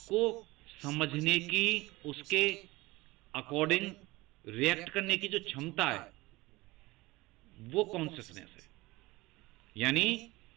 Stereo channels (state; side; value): quieter; left; 20.9 dB